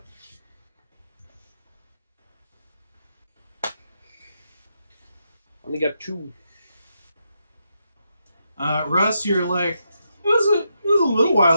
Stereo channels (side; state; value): both; inverted; correlation -0.82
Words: Only got 2. Russ, you're like, it was a little